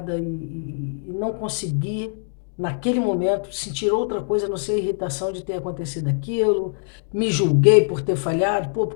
e não consegui, naquele momento, sentir outra coisa, a não ser a irritação de ter acontecido aquilo. Me julguei por ter falhado. Pô, por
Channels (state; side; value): silent; right; 63 dB below the other